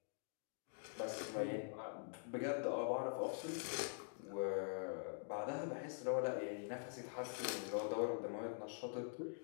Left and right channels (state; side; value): silent; right; digital silence